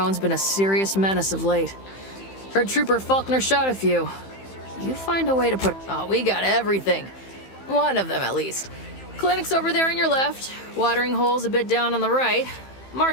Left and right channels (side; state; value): right; late; 15 ms